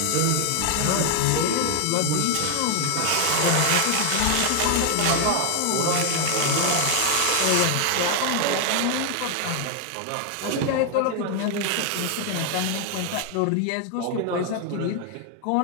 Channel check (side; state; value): both; different; correlation 0.00